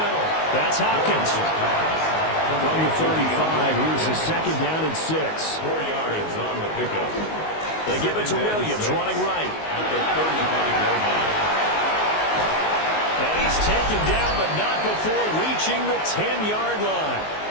That's Hopkins. From the 35, here's the 2nd down and 6. 4 yards on the pickup. They give it to Williams, running right. At the 35-yard line. And he's taken down, but not before reaching the 10-yard line.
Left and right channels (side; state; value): right; late; 19 ms